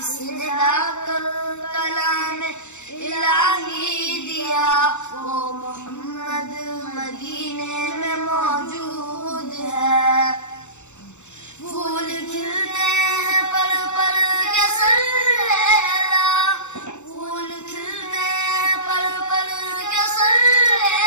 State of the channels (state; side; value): late; right; 0.83 ms